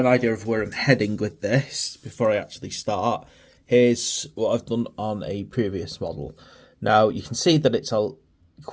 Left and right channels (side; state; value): both; identical; correlation 1.00